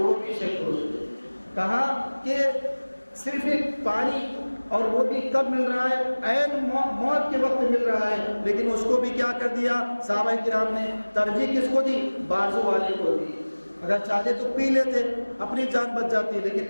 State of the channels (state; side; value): inverted; both; correlation -1.00